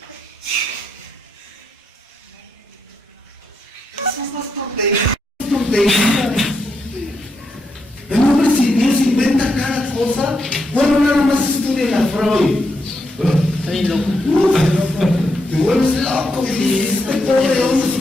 Esas más tonterías. El hombre, si Dios inventa cada cosa, bueno, nada más estudien a Freud. Está bien loco. Te vuelves loco, y este pobre hombre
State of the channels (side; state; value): both; normal; correlation 0.81